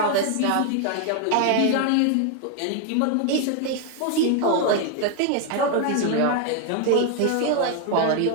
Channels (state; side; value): different; both; correlation 0.01